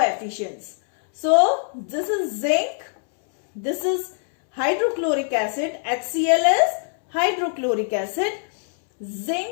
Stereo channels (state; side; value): silent; right; 64 dB below the other